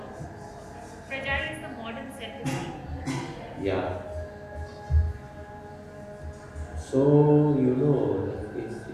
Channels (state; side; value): identical; both; correlation 1.00